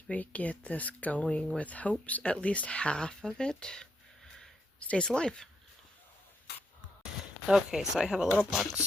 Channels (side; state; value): both; normal; correlation 0.79